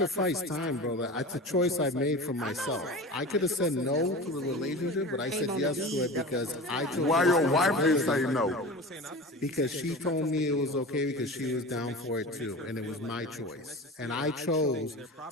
time, brother. It's a choice I made for myself. I could have said no to the relationship, but I said yes to it because I chose. Why your wife didn't say no? Because she told me it was okay because she was down for it too, and it was my choice. And I chose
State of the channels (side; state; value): both; normal; correlation 0.33